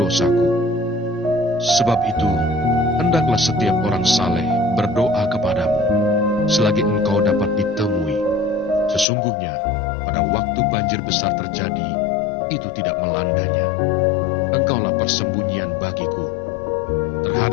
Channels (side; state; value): right; drops out; at 9.1 s